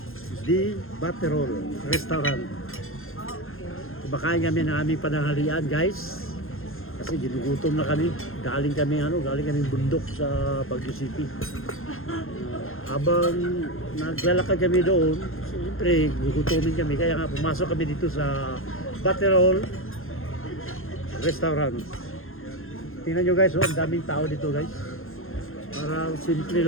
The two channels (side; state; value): right; late; 0.60 ms